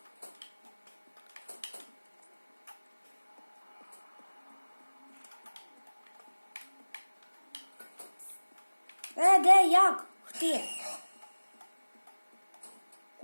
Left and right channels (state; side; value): inverted; both; correlation -1.00